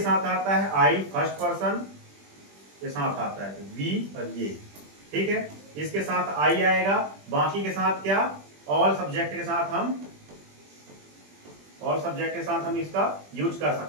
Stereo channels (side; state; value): left; late; 20 ms